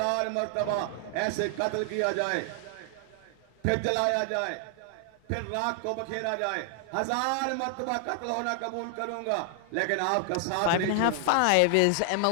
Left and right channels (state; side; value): different; both; correlation 0.00